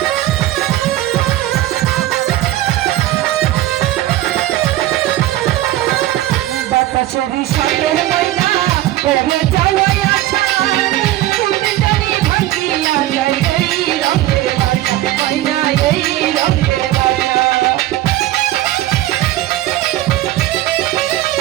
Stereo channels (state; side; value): quieter; left; 15.0 dB